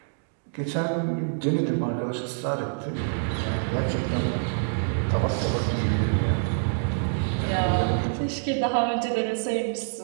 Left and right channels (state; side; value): silent; left; digital silence